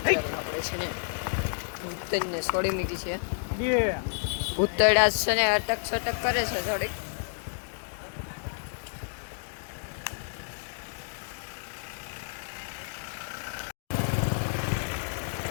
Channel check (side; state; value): right; silent; digital silence